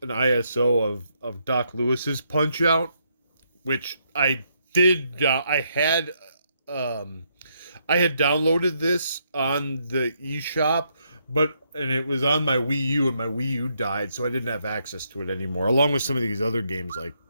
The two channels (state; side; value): inverted; both; correlation -0.76